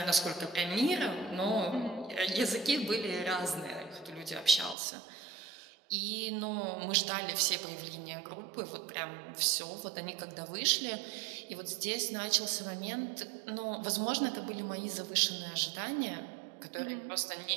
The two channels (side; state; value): left; drops out; at 4.8 s